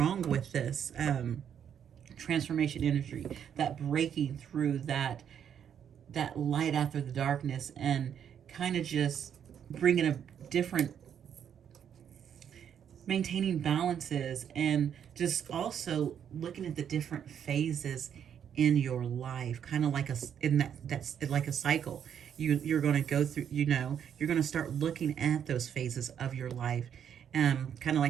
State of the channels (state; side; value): quieter; left; 8.7 dB